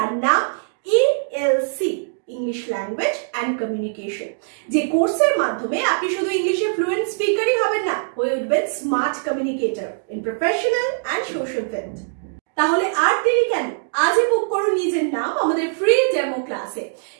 নাম ELC, English language and communication. যে কোর্সের মাধ্যমে আপনি শুধু ইংলিশে ফ্লুয়েন্ট স্পিকারই হবেন না, হয়ে উঠবেন smart communicator in professional and social field. তাহলে আর দেরি কেন, আজই বুক করুন নিজের নাম আমাদের ফ্রি ডেমো ক্লাসে।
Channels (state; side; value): silent; left; digital silence